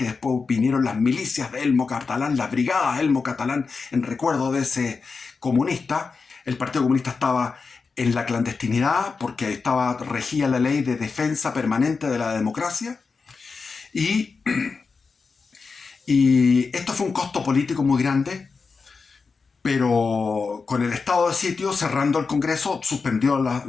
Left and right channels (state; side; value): quieter; right; 4.7 dB